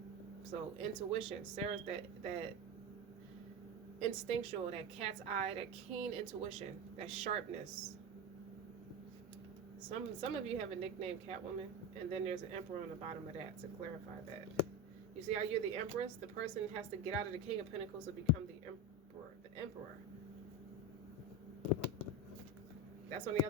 So intuition, Sarah's that instinctual, that cat's eye, that keen intuition, that sharpness. Some of you have a nickname Catwoman, and then there's an Emperor on the bottom of that to clarify that. You see how you're the Empress? The person has to get out of the King of Pentacles to become the Emperor. The Emperor. That's on the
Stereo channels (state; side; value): normal; both; correlation 0.20